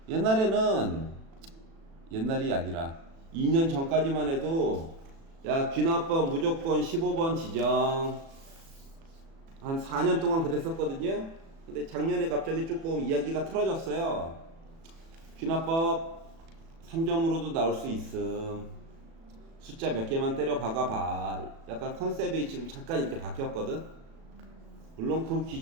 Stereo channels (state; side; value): late; left; 36 ms